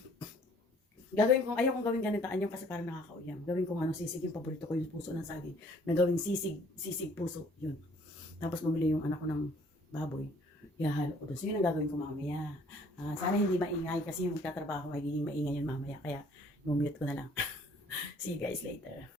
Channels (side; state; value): both; normal; correlation 0.58